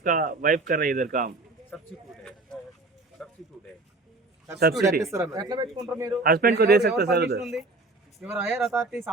वाइफ कर रही है इधर काम. सब्सिडी ఎట్లా పెట్టుకుంటారు మీరు? हस्बैंड को दे सकते सर उधर. ఎవరు higher authorities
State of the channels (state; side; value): quieter; left; 3.1 dB